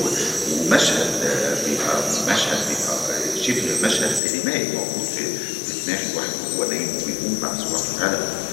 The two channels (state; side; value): drops out; right; at 4.2 s